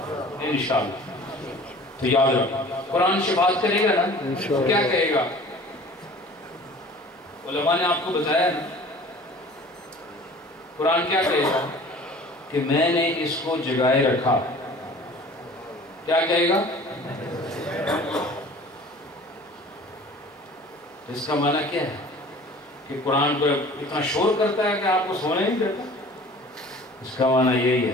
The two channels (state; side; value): normal; both; correlation 0.46